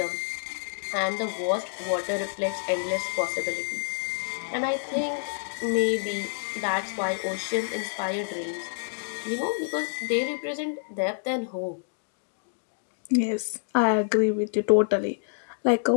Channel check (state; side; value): silent; right; digital silence